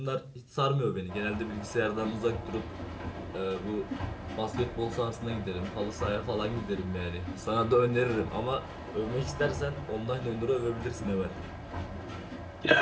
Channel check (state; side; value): identical; both; correlation 1.00